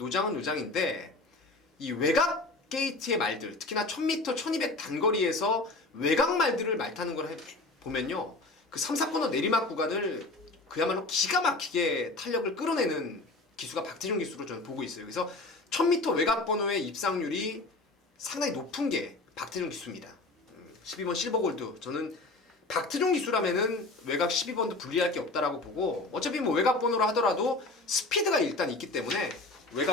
이 외곽 게이트의 말들, 특히나 1000m, 1200 단거리에서 외곽 말들을 말 타는 걸 보면요, 그 3, 4코너 내리막 구간을 그야말로 기가 막히게 탄력을 끌어내는 기수가 박태종 기수로 저는 보고 있어요. 그래서 1000m 외곽 번호의 입상률이 상당히 높은 게 박태종 기수입니다. 12번 실버골드, 저는 박태종 기수라면은 외곽 12번도 불리할 게 없다라고 보고, 어차피 뭐 외곽 번호로 하더라도 스피드가 일단 있기 때문에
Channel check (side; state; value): right; quieter; 3.1 dB